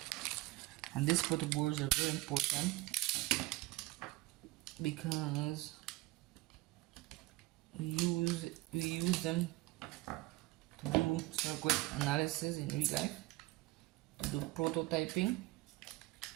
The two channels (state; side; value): quieter; left; 19.3 dB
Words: and these protoboards are very important because we use them to do circuit analysis in real life, to do prototyping.